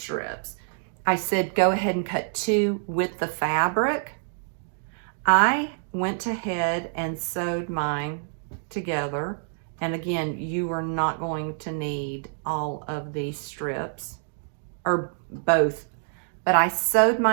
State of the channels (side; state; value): left; silent; digital silence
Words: I said go ahead and cut 2 with the fabric. I went ahead and sewed mine together. And again, you are not going to need all of these strips, or both, but I sewed